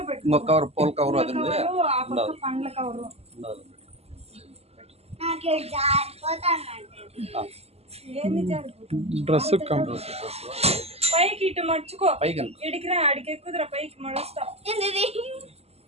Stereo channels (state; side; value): late; left; 0.30 ms